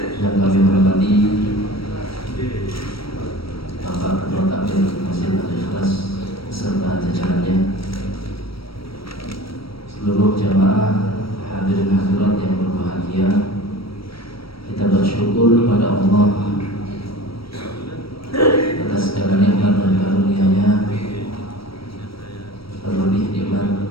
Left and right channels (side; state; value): right; late; 0.75 ms